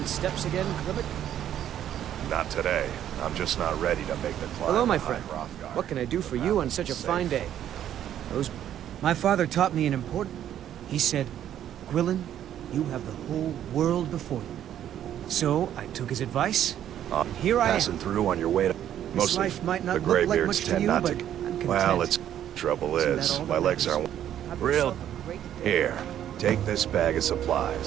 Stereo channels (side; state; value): left; quieter; 10.8 dB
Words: steps again, Klibbit? Not today. I'm just not ready to make the climb. Hello, my behind friend. Hrothgar. What can I do for you on such a fine day? My father taught me an important... He said, Gwilyn, you have the whole world before you. So, I took his advice. Here I am. Passing through on your way to... This Most life of might not the look like graybeards much to tend you, not but to... I'm content. Well, it's... Trouble Isn't that is, all my that legs matters? aren't... Have Real... yourself a great day. Here, take this bag of